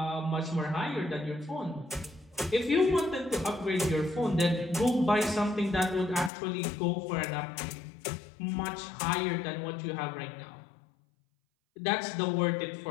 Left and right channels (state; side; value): drops out; right; at 6.3 s